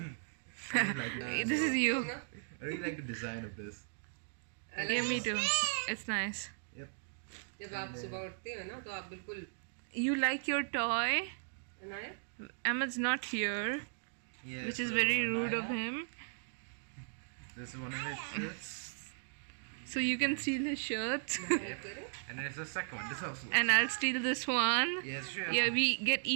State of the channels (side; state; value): left; silent; digital silence